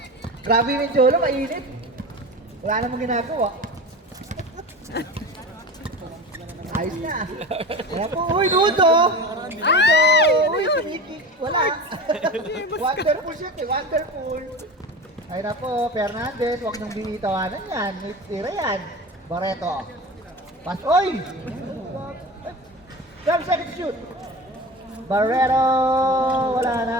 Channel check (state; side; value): normal; both; correlation 0.31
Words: Grabe yung Jolo, mainit. Wala namang ginagawa. Ayos na. Kaya po, uy, Nudo! Nudo! Uy, kinikik. Wala. Wonderful shit eh, wonderful. Ay na po, Fernandez, huwag niyong binitawanan yan. May tira yan. Barreto. Pass, oy! Jump, second shoot. Barreto! Wala